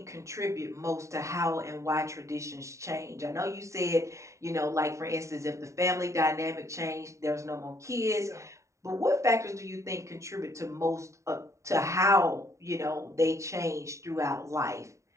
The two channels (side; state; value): left; late; 0.14 ms